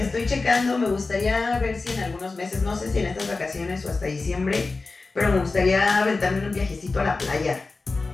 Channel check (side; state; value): right; quieter; 3.8 dB